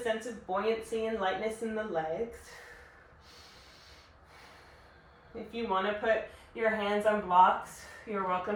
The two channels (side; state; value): both; identical; correlation 1.00